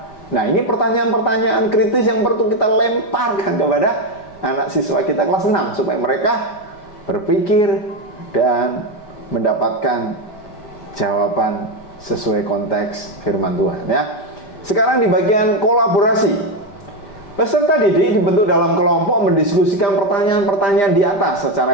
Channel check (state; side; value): late; right; 5.0 ms